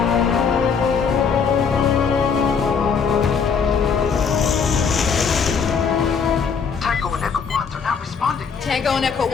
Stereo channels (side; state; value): right; quieter; 6.1 dB